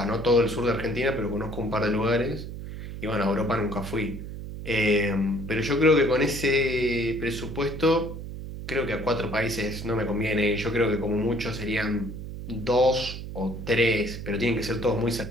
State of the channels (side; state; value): right; noise; hum, 9 dB below the sound